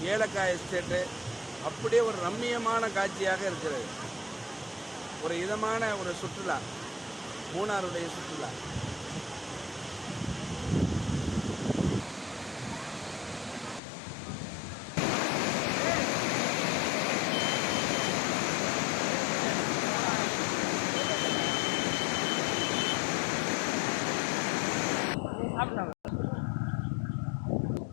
ஏலக்காய் எஸ்டேட்டு அப்படியே ஒரு ரம்மியமான காட்சியாக இருக்கிறது. ஒரு இதமான ஒரு சுற்றுலா, மூணாருடைய சுற்றுலா.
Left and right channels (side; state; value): right; drops out; at 13.8 s